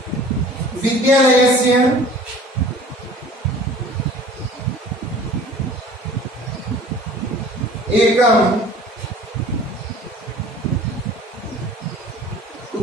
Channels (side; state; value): both; normal; correlation 0.47